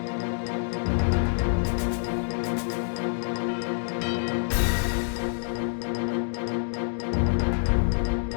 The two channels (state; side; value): silent; right; digital silence